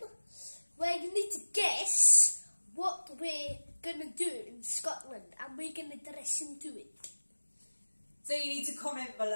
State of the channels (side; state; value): both; inverted; correlation -1.00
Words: where you need to guess what we're going to do in Scotland, and we're going to dress into it. So you need to comment